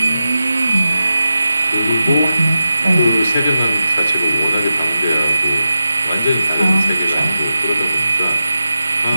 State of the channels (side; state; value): both; inverted; correlation -0.91